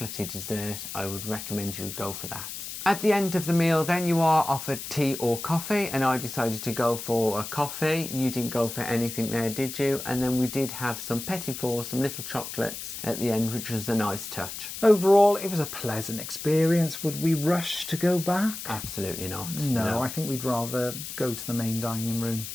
dessert, I would recommend you go for that. At the end of the meal then you are offered tea or coffee, and I decided to go for a coffee. You didn't go for anything there, did you? And then we did have some petit fours, some little chocolates at the end, which was a nice touch. Overall, it was a pleasant experience. Would we rush to go back? Absolutely not. No, I think we'd rather go to the main dining room.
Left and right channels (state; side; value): noise; left; hiss, 8 dB below the sound